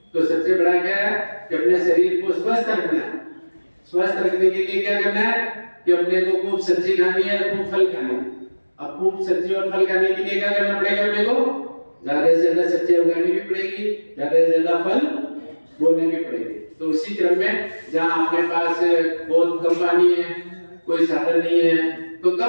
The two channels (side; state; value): both; inverted; correlation -1.00